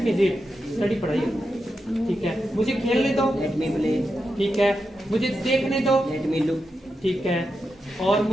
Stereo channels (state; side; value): normal; both; correlation 0.88